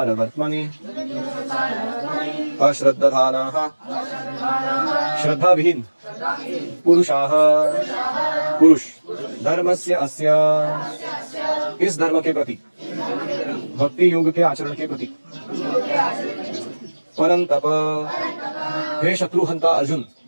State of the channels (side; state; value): both; inverted; correlation -1.00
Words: अश्रद्धधानाः श्रद्धा विहीन पुरुषाः पुरुष धर्मस्य अस्य इस धर्म के प्रति भक्ति योग के आचरण के प्रति परंतप हे शत्रुहंता अर्जुन